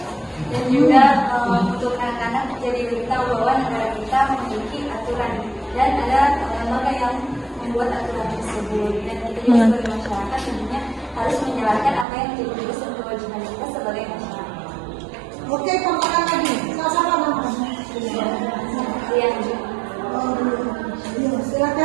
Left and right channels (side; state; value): left; drops out; at 12.1 s